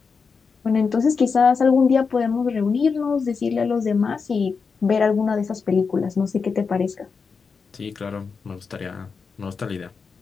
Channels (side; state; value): right; quieter; 5.3 dB